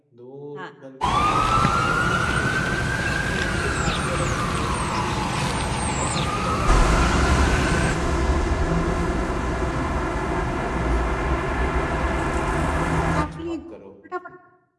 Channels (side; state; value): both; identical; correlation 1.00